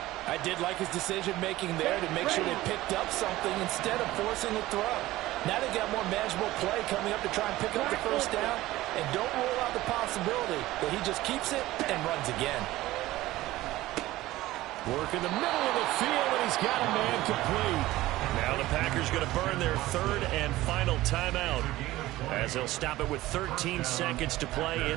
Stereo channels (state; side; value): quieter; left; 16.9 dB